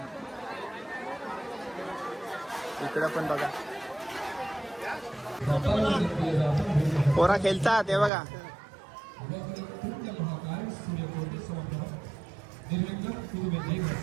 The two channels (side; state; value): left; drops out; at 8.1 s